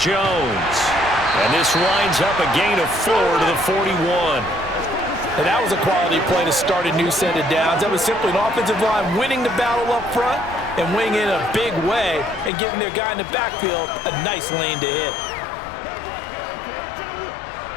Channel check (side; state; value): right; drops out; at 12.5 s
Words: Jones. And this winds up a gain of 4 to the 41. And that was a quality play to start a new set of downs. That was simply an offensive line winning the battle up front and winning in a big way and giving their guy in the backfield a nice lane to hit.